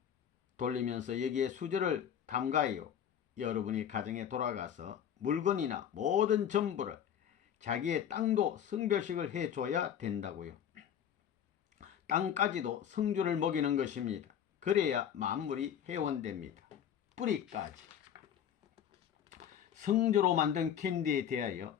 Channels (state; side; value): quieter; right; 9.2 dB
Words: 돌리면서 여기에 수저를 담가요. 여러분이 가정에 돌아가서 물건이나 모든 전부를 자기의 땅도 성별식을 해줘야 된다고요. 땅까지도 성주를 먹이는 것입니다. 그래야 만물이 회원됩니다. 뿌리까지. 성주로 만든 캔디에 대하여